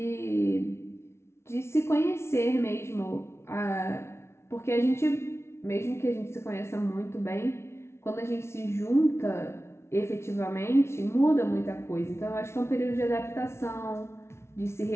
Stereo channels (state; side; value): late; right; 0.13 ms